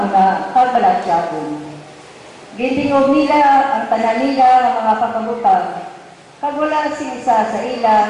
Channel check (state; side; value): identical; both; correlation 1.00